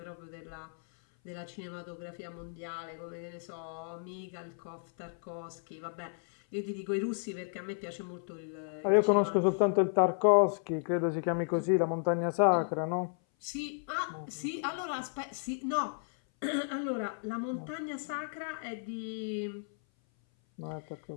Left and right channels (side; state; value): right; silent; 55 dB below the other